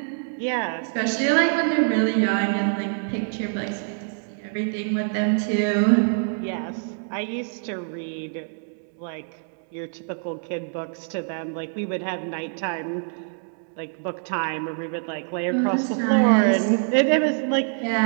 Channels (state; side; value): silent; left; 62 dB below the other